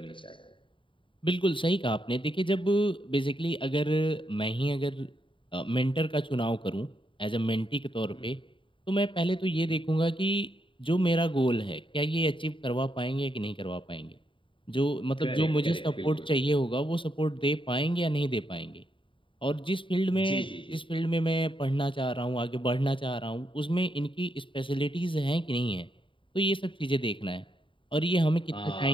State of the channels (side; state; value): right; late; 0.25 ms